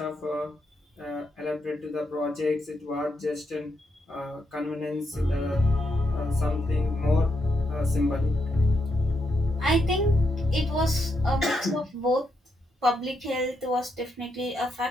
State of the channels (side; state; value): both; normal; correlation 0.81